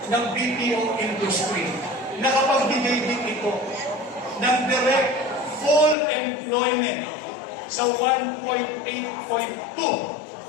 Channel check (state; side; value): drops out; right; at 6.0 s